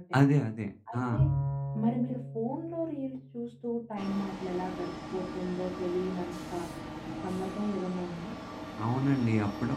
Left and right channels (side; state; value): both; identical; correlation 1.00